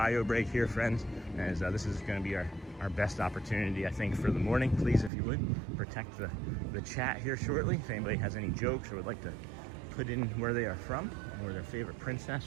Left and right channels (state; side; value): drops out; left; at 5.1 s